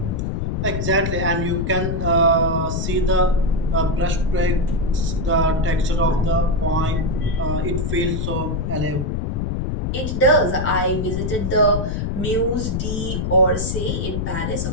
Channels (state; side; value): noise; left; rumble, 1 dB below the sound